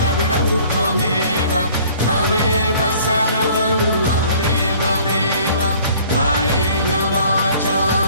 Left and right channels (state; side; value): inverted; both; correlation -0.53